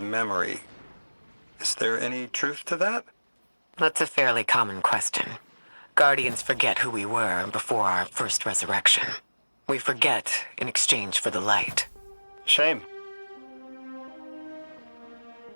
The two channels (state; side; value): inverted; both; correlation -1.00